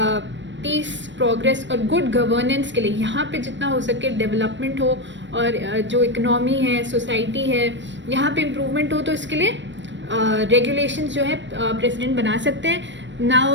piece, progress और good governance के लिए यहाँ पे जितना हो सके डेवलपमेंट हो, और जो इकनॉमी है, सोसाइटी है, यहाँ पे इम्प्रूवमेंट हो, तो इसके लिए regulations जो है प्रेसिडेंट बना सकते हैं.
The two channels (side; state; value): left; late; 0.53 ms